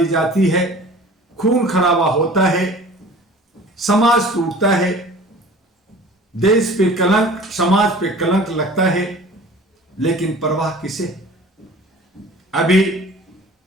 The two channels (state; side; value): normal; both; correlation 0.44